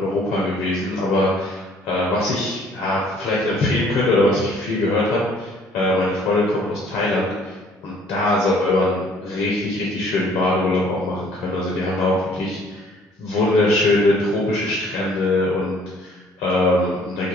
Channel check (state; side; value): normal; both; correlation 0.58